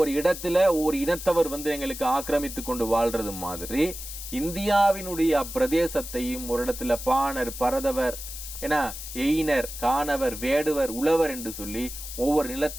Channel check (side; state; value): left; noise; hiss, 10 dB below the sound